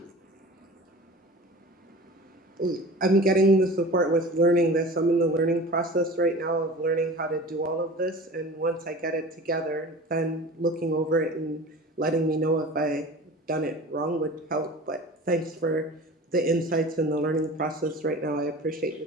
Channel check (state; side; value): normal; both; correlation 0.38